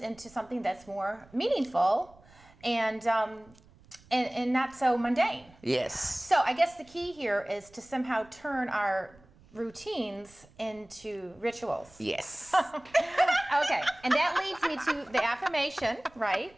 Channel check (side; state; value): right; noise; rumble, 26 dB below the sound